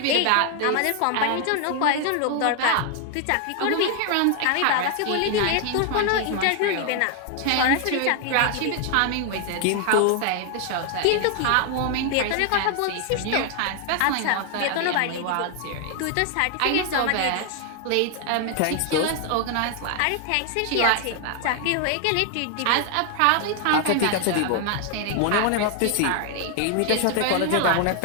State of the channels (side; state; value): both; different; correlation 0.00